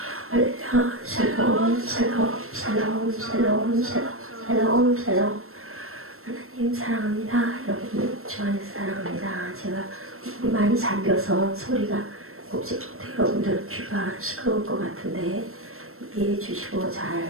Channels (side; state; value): left; late; 0.62 ms